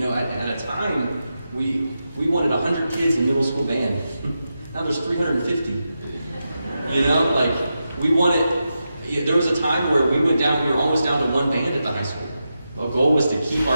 know, at a time, we wanted 100 kids in middle school band. Now there's 350. You know, like, we wanted, there was a time where we were almost down to 1 band at the high school. Our goal was to keep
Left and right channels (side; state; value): both; inverted; correlation -0.89